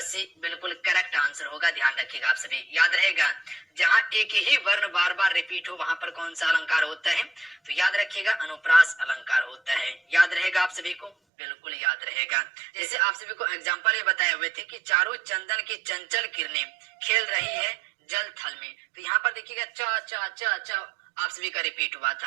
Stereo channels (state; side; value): drops out; left; at 11.1 s